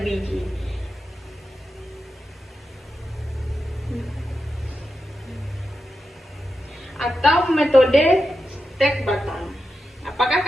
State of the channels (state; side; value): normal; both; correlation 0.88